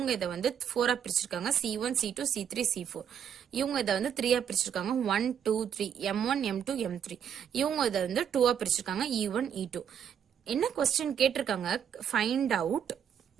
இதை வந்து 4 பிரிச்சிருக்காங்க. C1 C2 C3 C4. இவங்க இதை வந்து 3 பிரிச்சிருக்காங்க. 1 2 3 M1 M2 M3. இவங்க இதை வந்து 2 பிரிச்சிருக்காங்க. E1 E2. என்ன क्वेश्चन கேட்டிருக்காங்க, ஃபைண்ட் அவுட்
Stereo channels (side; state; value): left; quieter; 8.5 dB